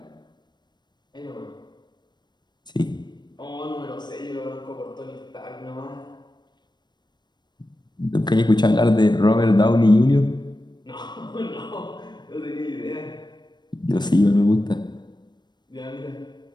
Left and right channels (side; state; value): right; late; 0.21 ms